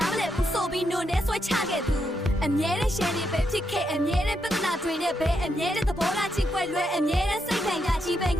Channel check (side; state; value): both; normal; correlation 0.81